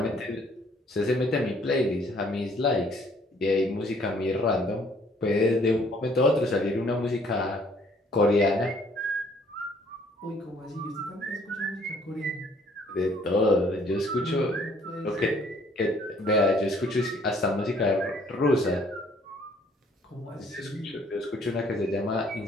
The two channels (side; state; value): both; normal; correlation 0.61